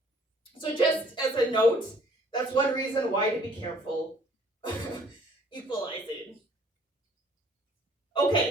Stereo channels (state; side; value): normal; both; correlation 0.58